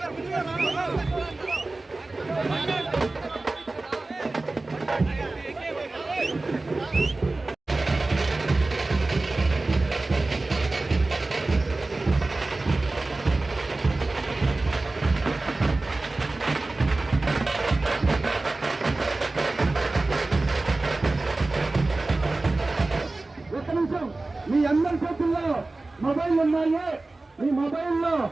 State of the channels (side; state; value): left; quieter; 3.2 dB